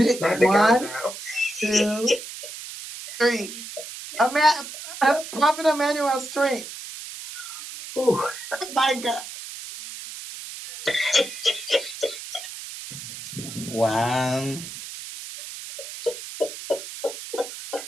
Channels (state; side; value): noise; right; hiss, 11 dB below the sound